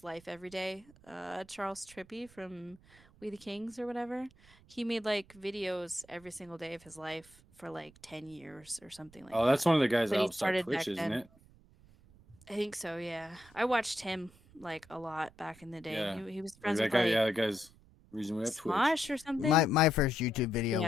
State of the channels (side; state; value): right; noise; rumble, 26 dB below the sound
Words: life every day, Charles Trippy from We the Kings or whatever, he made like videos every single day of his life for like 10 years or something like Oh, that. that's one of the guys But that he helped start started Twitch, back isn't then. it? I think so, yeah. I watched him like a lot back in the day. Yeah. He was Like friends that with guy, like yeah, that guy's the reason we have Twitch. Smosh or something. My first YouTube video Yeah.